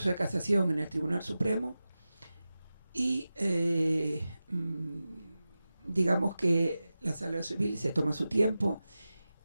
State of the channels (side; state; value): both; inverted; correlation -0.94